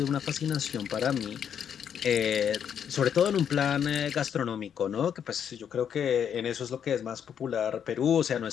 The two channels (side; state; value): right; quieter; 8.4 dB